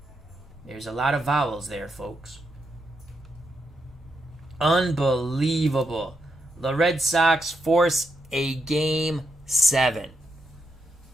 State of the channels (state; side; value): normal; both; correlation 0.83